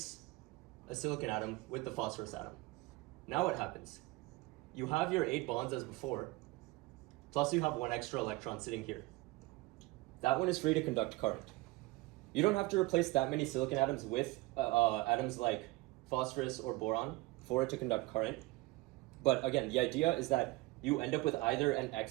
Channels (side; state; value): left; quieter; 21.4 dB